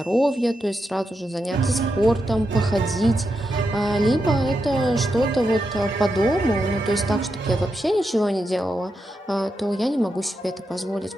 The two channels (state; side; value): normal; both; correlation 0.86